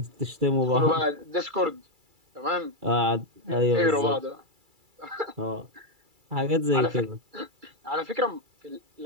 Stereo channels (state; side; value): late; left; 2.3 ms